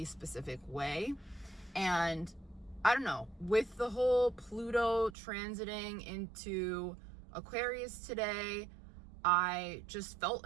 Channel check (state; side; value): drops out; left; at 5.2 s